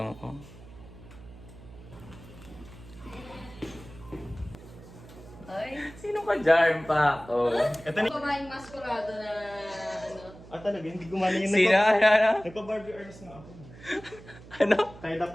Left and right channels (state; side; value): noise; right; hum, 18 dB below the sound